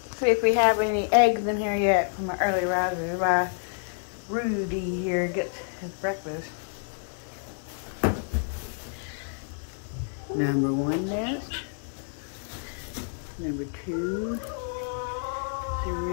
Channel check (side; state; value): right; silent; digital silence